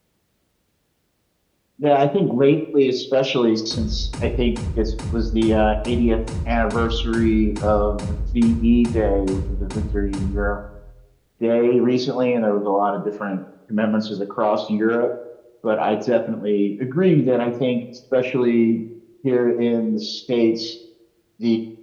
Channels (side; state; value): both; identical; correlation 1.00